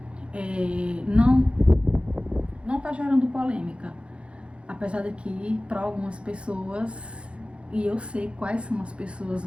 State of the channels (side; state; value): left; late; 0.059 ms